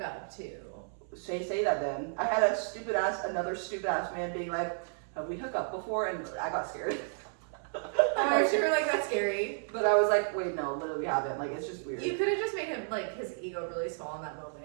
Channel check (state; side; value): silent; left; 56 dB below the other